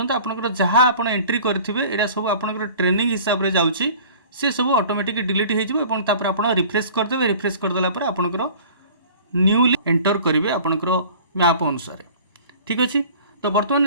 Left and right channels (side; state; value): both; inverted; correlation -0.46